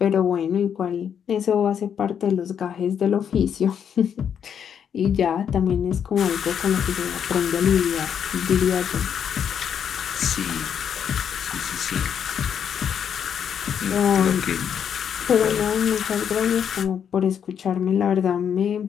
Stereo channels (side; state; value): right; quieter; 8.1 dB